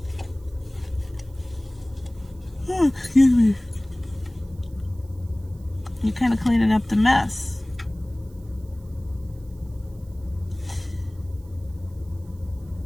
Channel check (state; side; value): noise; right; hiss, 30 dB below the sound